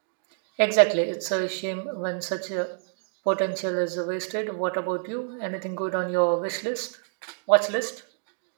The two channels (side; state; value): left; silent; digital silence